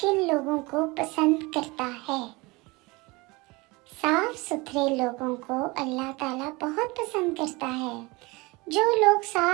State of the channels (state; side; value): quieter; left; 24.4 dB